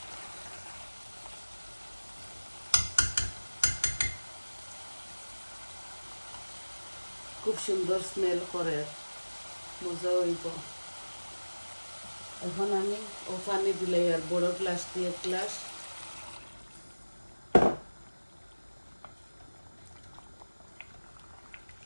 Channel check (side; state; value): both; inverted; correlation -1.00